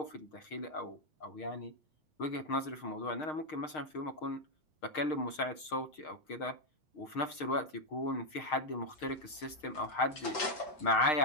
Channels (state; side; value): late; right; 6.4 ms